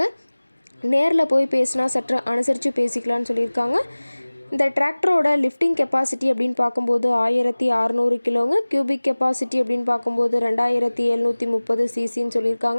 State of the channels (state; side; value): inverted; both; correlation -1.00